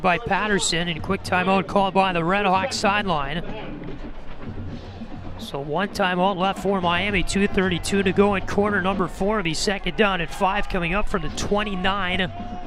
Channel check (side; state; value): both; identical; correlation 1.00